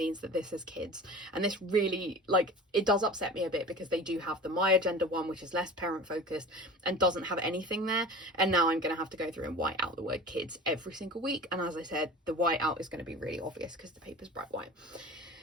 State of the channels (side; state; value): both; normal; correlation 0.37